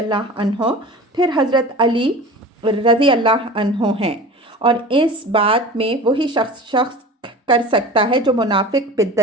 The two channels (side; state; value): both; normal; correlation 0.37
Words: عنہ، پھر حضرت علی رضی اللہ عنہ ہیں، اور اس بات میں وہی شخص کر سکتا ہے جو منافق،